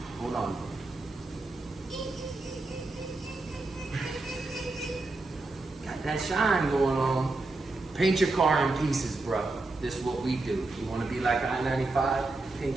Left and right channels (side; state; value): left; quieter; 3.2 dB